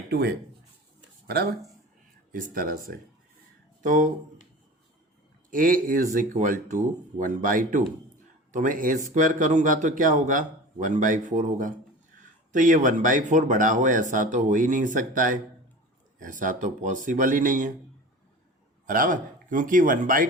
है, बराबर, इस तरह से। तो A इज इक्वल टू 1/2, तो मैं A स्क्वायर करूँगा तो क्या होगा, 1/4 होगा। तो ये 1/4 बड़ा हो, ऐसा तो हो ही नहीं सकता है, ऐसा तो पॉसिबल ही नहीं है, बराबर, क्योंकि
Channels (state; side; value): normal; both; correlation 0.36